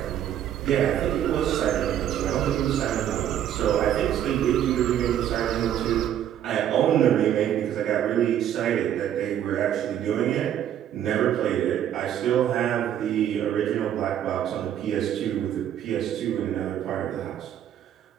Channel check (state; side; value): quieter; left; 10.6 dB